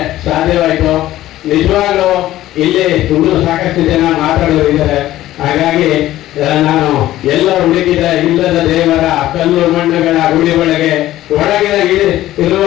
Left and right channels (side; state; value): right; quieter; 14.6 dB